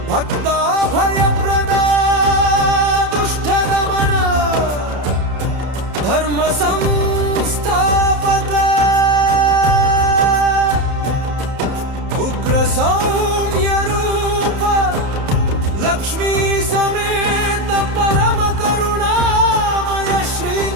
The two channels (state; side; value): late; left; 30 ms